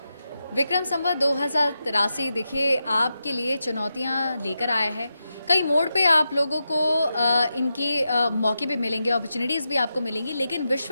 विक्रम संवत 2083 देखिए आपके लिए चुनौतियां लेकर आया है। कई मोड़ पे आप लोगों को इनकी मौके भी मिलेंगे, अपॉर्चुनिटीज़ भी आपको मिलेंगी, लेकिन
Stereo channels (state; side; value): inverted; both; correlation -0.88